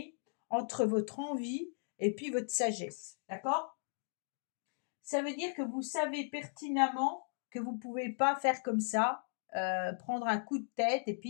entre votre envie et puis votre sagesse. D'accord? Ça veut dire que vous savez pertinemment que vous ne pouvez pas faire comme ça, prendre un coup de tête et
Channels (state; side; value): silent; right; digital silence